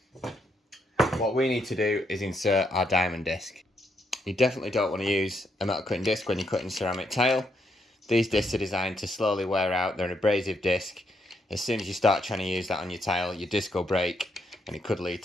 What we need to do is insert our diamond disc. You definitely don't want to use a metal cutting disc when you're cutting ceramic tile. These discs are designed to slowly wear out. They're an abrasive disc. As soon as you start trying to use that on your tile, your disc will break and it could lead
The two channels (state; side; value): normal; both; correlation 0.77